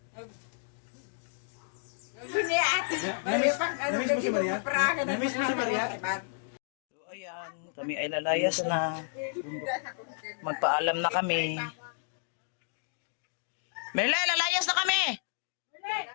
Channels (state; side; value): silent; right; digital silence